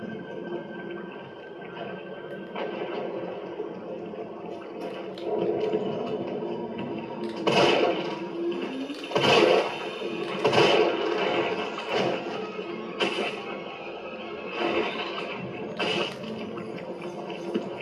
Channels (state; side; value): identical; both; correlation 1.00